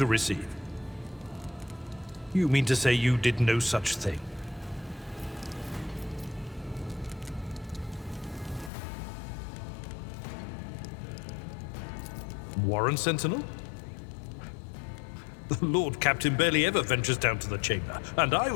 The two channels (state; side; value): drops out; right; at 8.7 s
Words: receive. You mean to say you did no such thing? Warren Sentinel? The Lord Captain barely ever ventures down to the chamber, and I